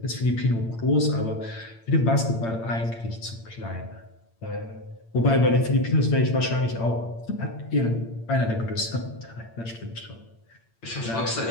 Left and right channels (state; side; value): late; right; 8.8 ms